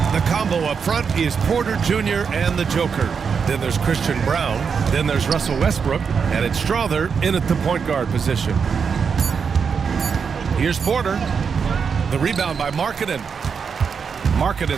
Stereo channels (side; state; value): left; quieter; 6.2 dB